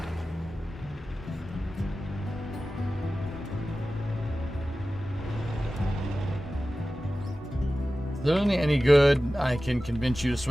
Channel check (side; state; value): both; normal; correlation 0.95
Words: Is there any good I can convince you to